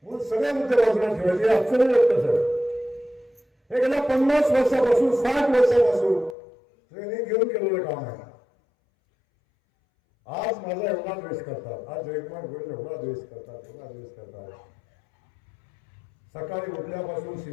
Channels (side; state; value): right; drops out; at 6.4 s